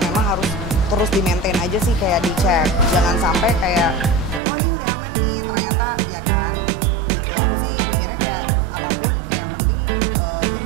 memang harus terus di-maintain aja sih, kayak dicek. Jangan sampai kayak, oh ini udah aman nih, ternyata ya kan gitu. Aku sih mikirnya kayak apapun kayak yang penting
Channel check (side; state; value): left; drops out; at 4.4 s